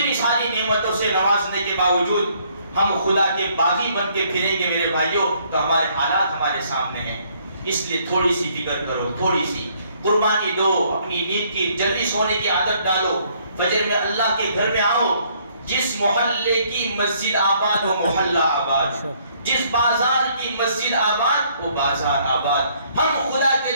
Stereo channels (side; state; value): both; inverted; correlation -0.66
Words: ساری نعمتوں سے نوازنے کے باوجود ہم خدا کے باغی بن کے پھریں گے میرے بھائیوں, تو ہمارے حالات ہمارے سامنے ہیں. اس لیے تھوڑی سی فکر کرو, تھوڑی سی قربانی دو, اپنی نیند کی جلدی سونے کی عادت ڈالو, فجر میں اللہ کے گھر میں آؤ. جس محلے کی مسجد آباد وہ محلہ آباد, جس بازار کی مسجد آباد وہ بازار آباد. ہم خدا کے